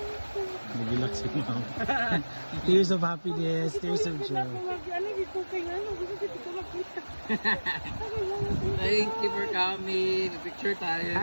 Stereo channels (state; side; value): inverted; both; correlation -1.00